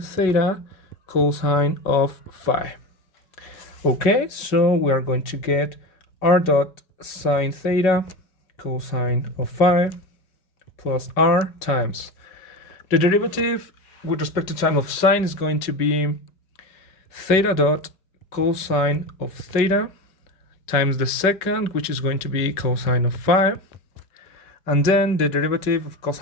theta cosine of phi. Okay, so we are going to get r dot sine theta cosine of phi plus r times the derivative with respect to time of sine is going to be theta dot cosine of theta times the second, which is going to be cosine of phi, and then the derivative of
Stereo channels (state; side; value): late; right; 5.4 ms